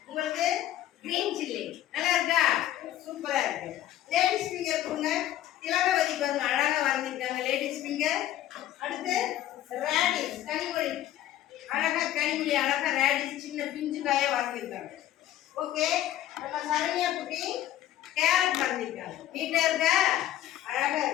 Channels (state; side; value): quieter; right; 12.9 dB